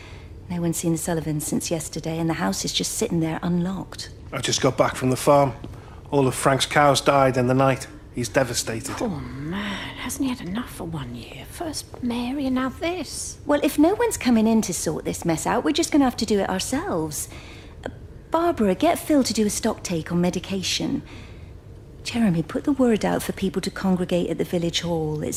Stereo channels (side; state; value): both; identical; correlation 1.00